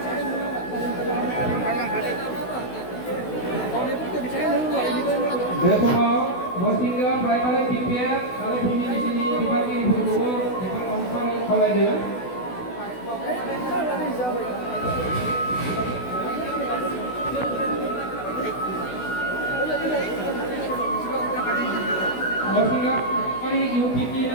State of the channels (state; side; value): late; right; 16 ms